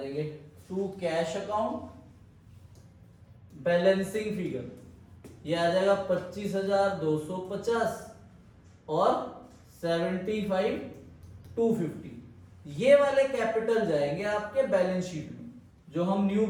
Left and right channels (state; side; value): identical; both; correlation 1.00